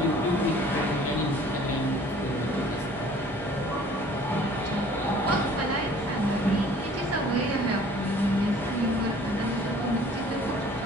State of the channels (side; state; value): both; normal; correlation 0.52